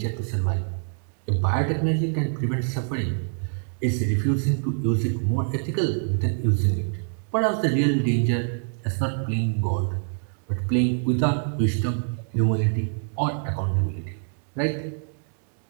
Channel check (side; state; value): left; silent; 61 dB below the other